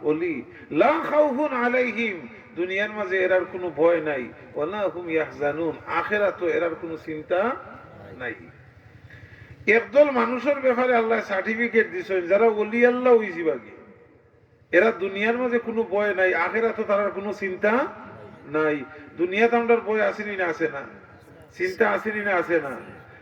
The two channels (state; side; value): identical; both; correlation 1.00